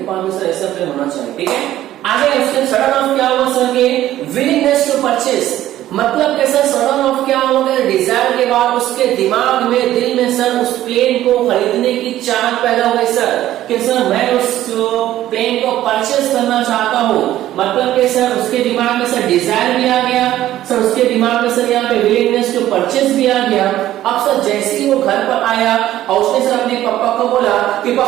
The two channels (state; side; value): quieter; left; 13.5 dB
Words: पास में सर ऐसा प्लेन होना चाहिए, ठीक है। आगे उसके सडन ऑफ क्या हुआ सर के, विलिंगनेस टू परचेस, मतलब कि सर सडन ऑफ क्या हुआ, डिजायर के बाद उसके दिमाग में, दिल में सर उस प्लेन को खरीदने की चाहत पैदा हो गई सर कि सर मैं उस प्लेन को परचेस करना चाहता हूँ। मतलब कि सर उसके दिमाग में सर डिजायर भी आ गया, सर उसके दिमाग में सर यहाँ पे विलिंगनेस टू परचेस भी आ गया। अब सर जैसे ही वो घर पर आया और उसने सर अपने पापा को बोला कि